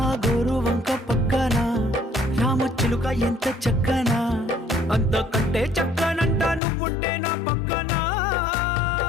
గోరు వంక పక్కన రామచిలుక ఎంత చక్కనా అంతకంటే చక్కనంట నువ్వుంటే నా పక్కన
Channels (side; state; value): right; drops out; at 6.6 s